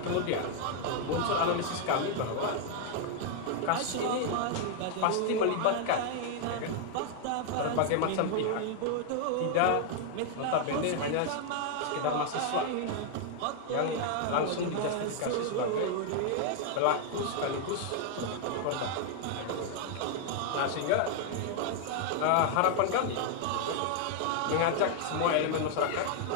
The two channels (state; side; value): different; both; correlation 0.00